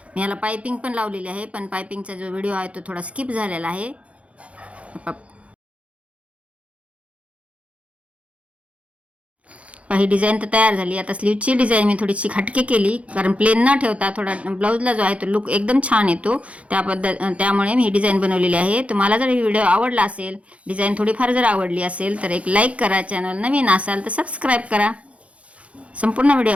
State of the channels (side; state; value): left; late; 0.063 ms